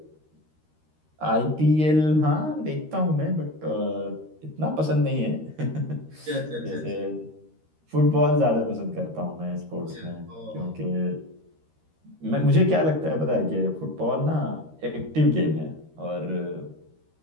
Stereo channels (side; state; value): left; late; 13 ms